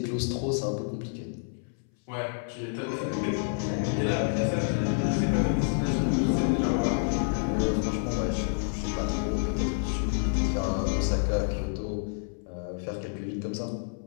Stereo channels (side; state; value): right; silent; 59 dB below the other